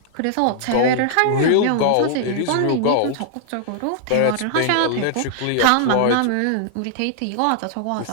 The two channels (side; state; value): both; different; correlation -0.01